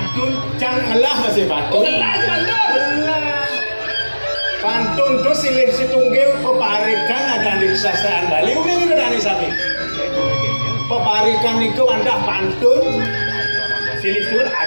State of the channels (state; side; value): inverted; both; correlation -1.00